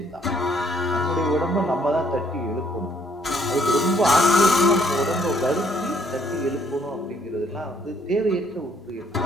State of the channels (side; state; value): both; normal; correlation 0.66